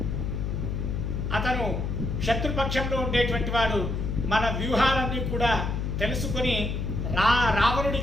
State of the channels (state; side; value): noise; left; hum, 2 dB below the sound